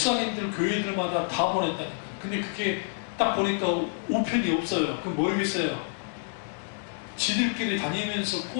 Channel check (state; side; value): silent; right; digital silence